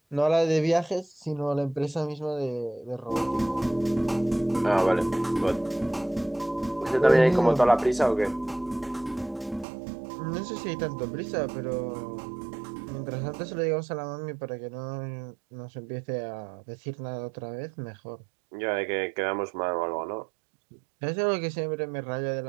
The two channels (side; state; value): left; drops out; at 9.7 s